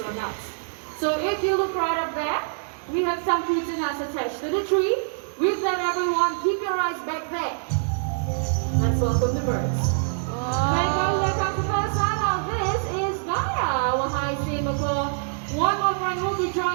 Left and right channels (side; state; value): left; silent; digital silence